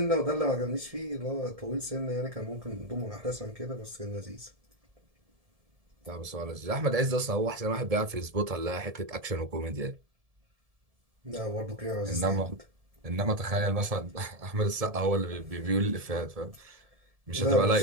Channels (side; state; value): left; late; 1.7 ms